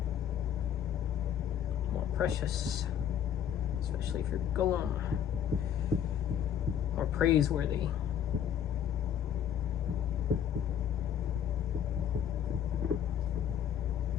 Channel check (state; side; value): quieter; right; 9.3 dB